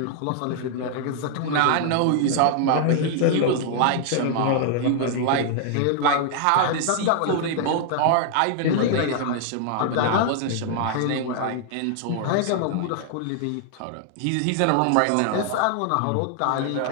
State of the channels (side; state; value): both; different; correlation 0.00